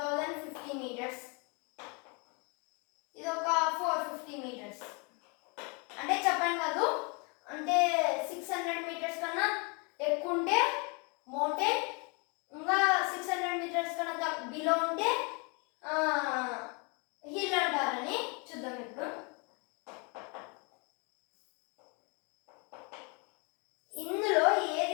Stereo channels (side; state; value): right; quieter; 32.6 dB